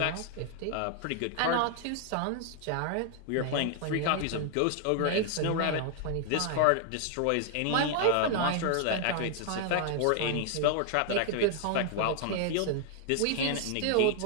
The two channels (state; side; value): different; both; correlation 0.00